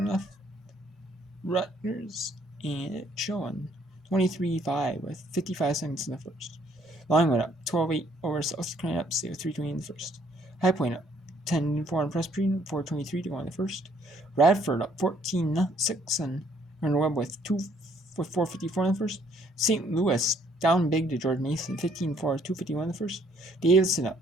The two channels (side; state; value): both; normal; correlation 0.65